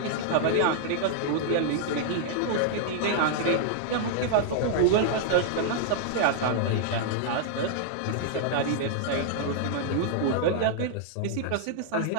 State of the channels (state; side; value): different; both; correlation -0.01